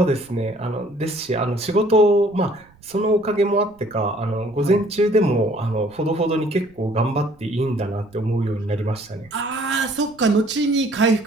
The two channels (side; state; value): right; noise; rumble, 29 dB below the sound